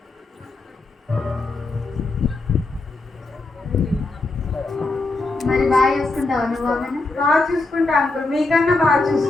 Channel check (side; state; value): right; quieter; 3.3 dB